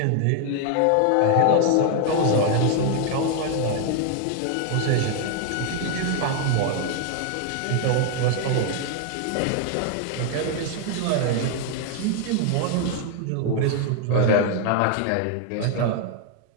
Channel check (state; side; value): different; both; correlation 0.00